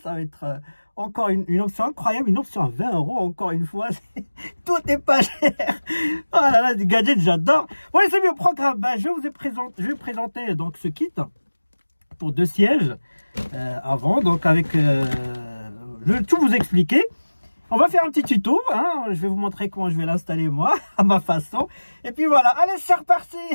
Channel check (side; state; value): both; inverted; correlation -1.00